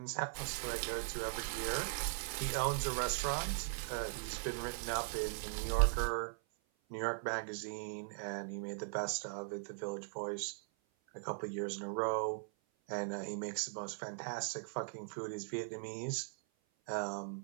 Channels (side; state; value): left; silent; 51 dB below the other